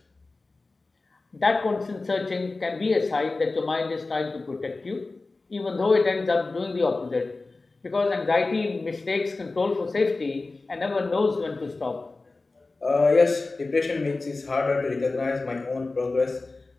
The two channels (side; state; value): right; quieter; 3.5 dB